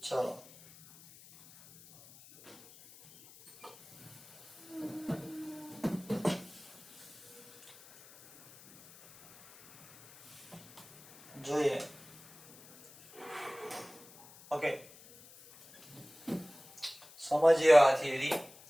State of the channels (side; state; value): left; noise; hiss, 22 dB below the sound